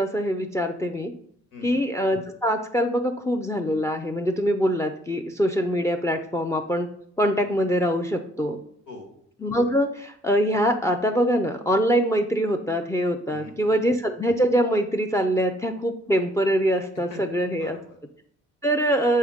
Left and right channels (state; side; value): normal; both; correlation 0.64